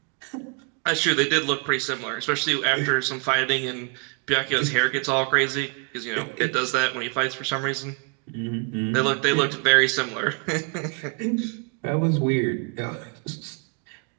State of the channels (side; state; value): left; quieter; 35.0 dB